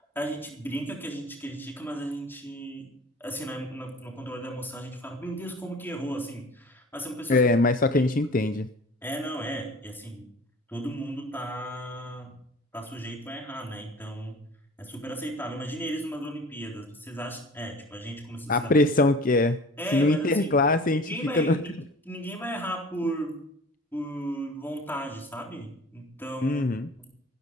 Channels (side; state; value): both; normal; correlation 0.42